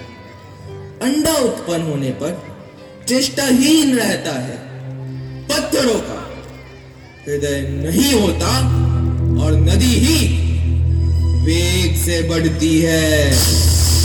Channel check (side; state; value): both; identical; correlation 1.00